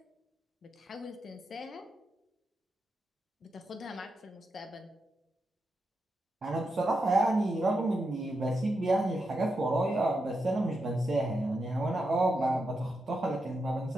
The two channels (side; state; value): both; normal; correlation 0.86